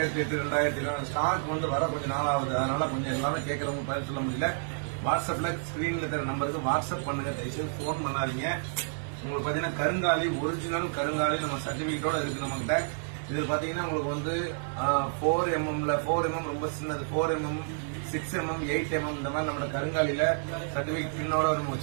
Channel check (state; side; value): silent; left; 58 dB below the other